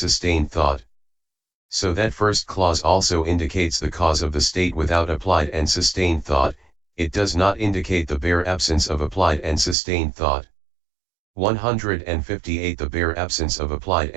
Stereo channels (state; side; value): drops out; left; at 9.8 s